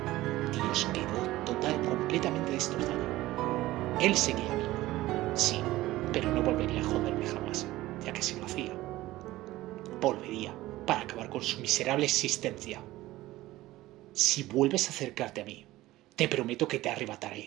Dios quedó completamente destrozado. Él seguía vivo, sí, pero no volvería a joderme jamás, ya que si lo hacía, volvería para acabar con su miserable existencia. Si vuelves a acercarte a mí, te prometo que te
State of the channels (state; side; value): quieter; left; 17.1 dB